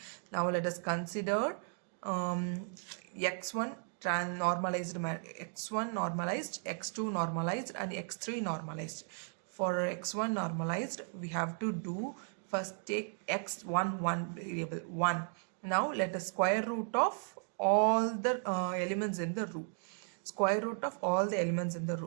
Now let us consider x1 normalized, x1 normalized, x2 normalized and x3 normalized. For x1 normalized, we have to do first take x1 variable 1. Now let us square root of all the elements in the row. Square root of all the elements in the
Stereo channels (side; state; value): left; silent; 54 dB below the other